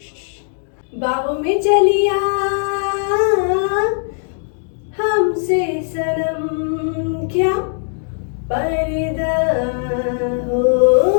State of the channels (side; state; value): right; silent; digital silence